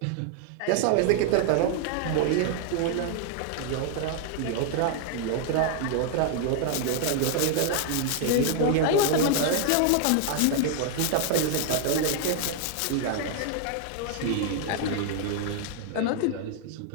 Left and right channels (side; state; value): both; different; correlation 0.00